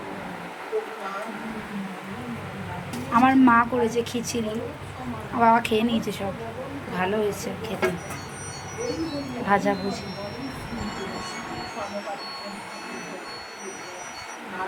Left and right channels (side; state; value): both; identical; correlation 1.00